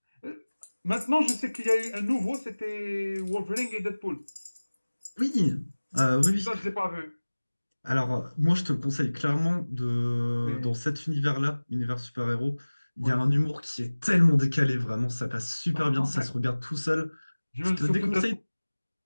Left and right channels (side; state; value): both; inverted; correlation -1.00